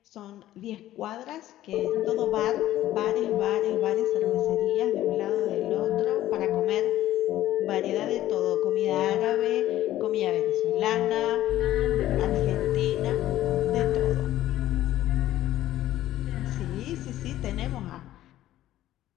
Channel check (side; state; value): right; quieter; 13.9 dB